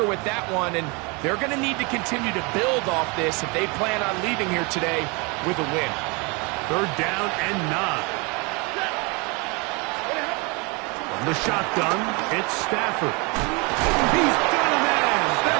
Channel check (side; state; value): left; quieter; 29.4 dB